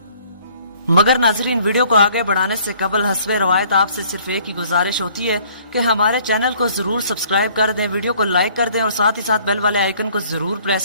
मगर नाजरीन, वीडियो को आगे बढ़ाने से कबल हस्बे रवायत आपसे सिर्फ एक ही गुजारिश होती है कि हमारे चैनल को जरूर सब्सक्राइब कर दें, वीडियो को लाइक कर दें और साथ ही साथ बेल वाले आइकन को जरूर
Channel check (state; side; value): inverted; both; correlation -0.58